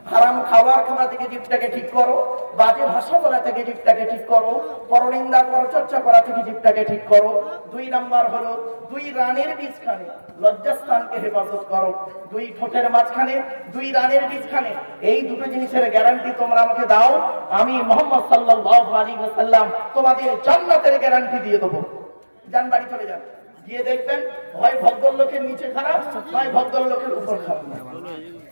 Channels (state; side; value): inverted; both; correlation -1.00